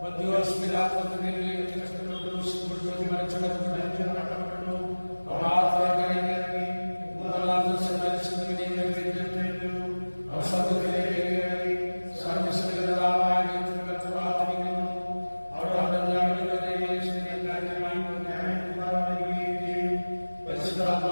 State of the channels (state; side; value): inverted; both; correlation -1.00